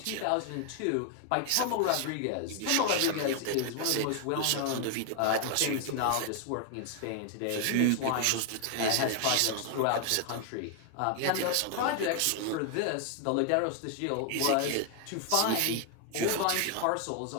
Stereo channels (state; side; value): different; both; correlation 0.00